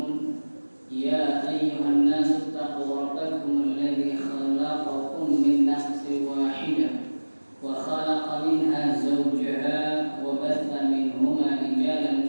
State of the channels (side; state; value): both; inverted; correlation -1.00